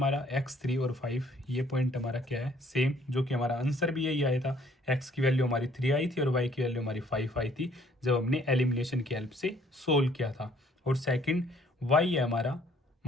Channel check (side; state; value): both; normal; correlation 0.61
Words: x3 और 5 ये पॉइंट हमारा क्या है सेम, जो कि हमारा आंसर भी यही आया था। x की वैल्यू हमारी 3 आई थी और y की वैल्यू हमारी 5 आई थी जब हमने एलिमिनेशन की हेल्प से सोल्व किया था। और सेकंड y है हमारा